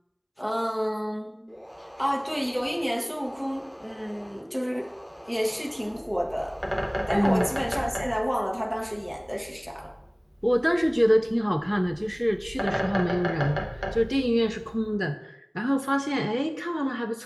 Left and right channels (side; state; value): both; identical; correlation 1.00